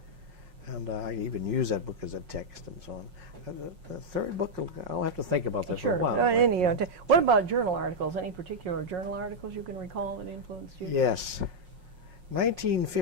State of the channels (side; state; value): left; late; 5.5 ms